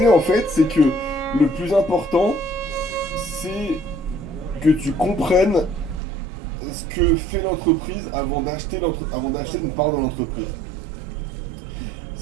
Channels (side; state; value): left; drops out; at 6.0 s